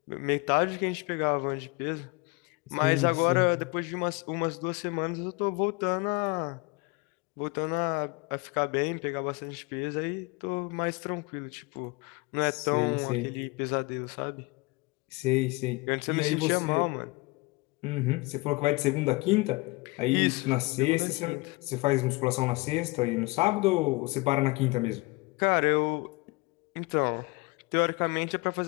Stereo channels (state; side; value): quieter; right; 25.1 dB